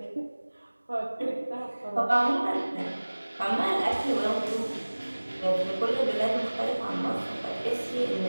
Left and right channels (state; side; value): inverted; both; correlation -1.00